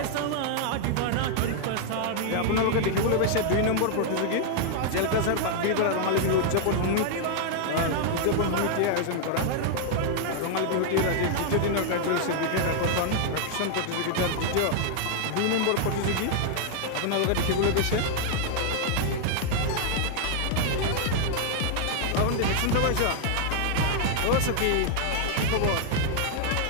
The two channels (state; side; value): different; both; correlation 0.00